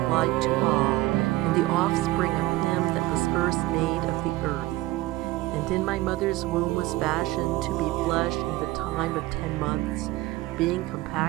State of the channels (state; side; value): quieter; left; 18.2 dB